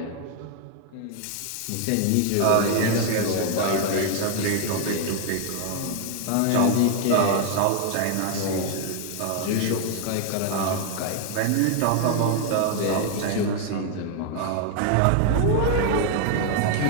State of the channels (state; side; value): different; both; correlation 0.00